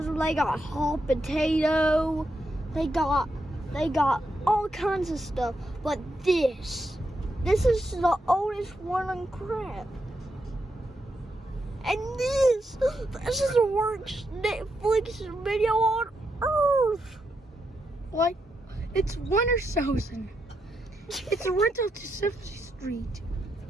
they got hot potato, they got all kinds of stuff. But this is the oldest one on crap. And this is the worst Netflix video on earth. Like, it's winter season. It's a rental to 70th Street.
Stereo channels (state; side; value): normal; both; correlation 0.83